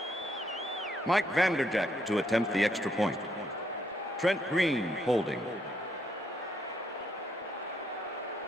Mike Vanderjagt to attempt the extra point. Trent Green holding.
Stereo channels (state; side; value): normal; both; correlation 0.73